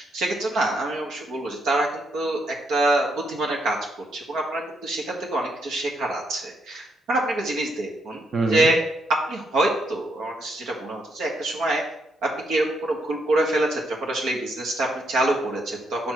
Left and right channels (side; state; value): both; normal; correlation 0.77